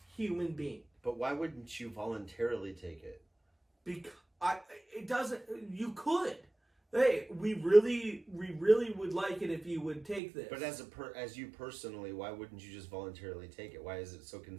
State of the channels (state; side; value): drops out; left; at 10.2 s